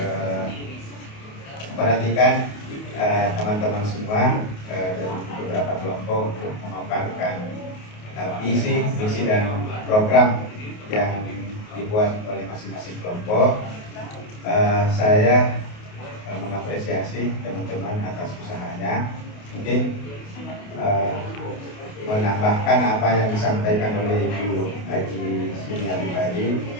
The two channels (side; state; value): right; late; 28 ms